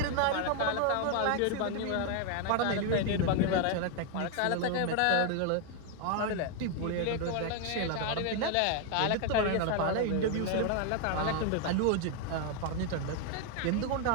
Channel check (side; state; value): both; different; correlation 0.01